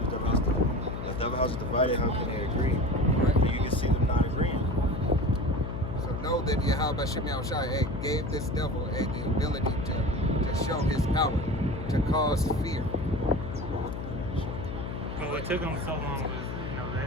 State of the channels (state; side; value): noise; left; hum, 6 dB below the sound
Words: Devil house is divided. How can they agree? Right. You can see them not agreeing. So know that Yahweh Shem Yahushai gave this devil the ability to show his power, to cause fear. But what took them so long was,